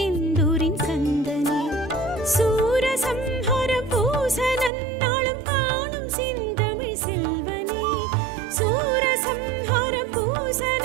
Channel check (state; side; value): drops out; left; at 4.7 s